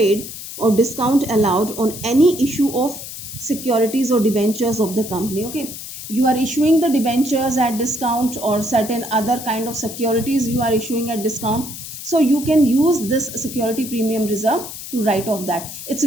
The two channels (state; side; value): noise; left; hiss, 10 dB below the sound